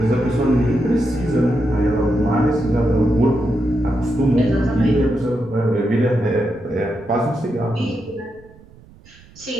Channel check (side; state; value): right; noise; rumble, 24 dB below the sound